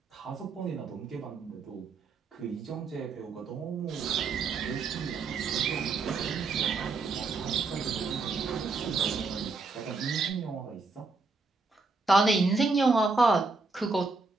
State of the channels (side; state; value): left; quieter; 4.0 dB